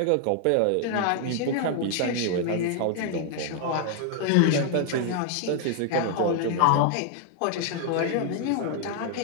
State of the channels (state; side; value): different; both; correlation 0.00